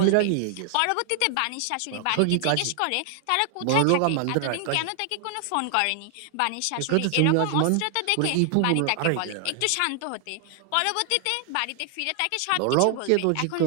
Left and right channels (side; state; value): both; different; correlation 0.00